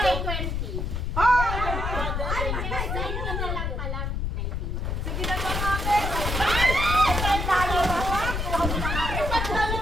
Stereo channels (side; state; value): left; noise; rumble, 1 dB below the sound